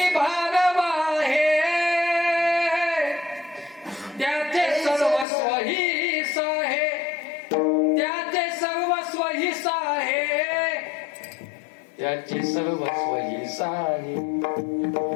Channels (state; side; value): drops out; right; at 5.2 s